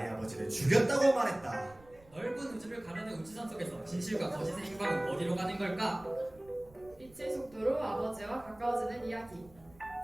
아버지를 죽였다고 말했다. 넓은 우주를 가르는 우주선 속에서 진실과 거짓의 행방은 어디로 가는 걸까? 빛의 속도로 아버지와 가까워지는 이야기.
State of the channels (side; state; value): right; noise; rumble, 25 dB below the sound